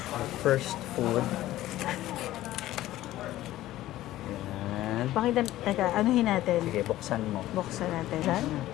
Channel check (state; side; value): quieter; right; 15.0 dB